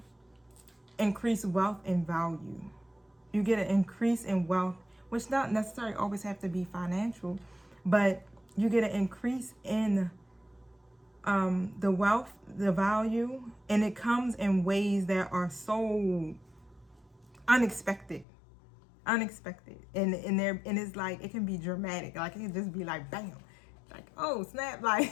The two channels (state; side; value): drops out; right; at 18.2 s